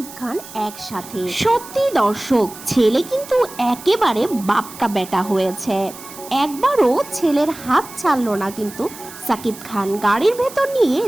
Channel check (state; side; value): noise; right; hiss, 16 dB below the sound